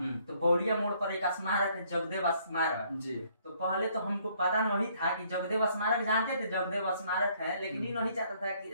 तो बौड़िया मोड़ पर एक स्मारक है, जगदेव स्मारक जी। तो पहले तो हमको पता नहीं था कि जगदेव स्मारक, जानते थे जगदेव स्मारक है, लेकिन ये नहीं चाहता था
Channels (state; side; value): inverted; both; correlation -0.65